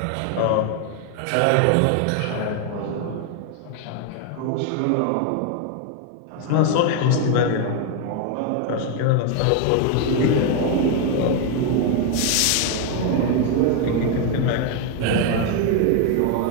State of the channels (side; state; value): both; different; correlation 0.01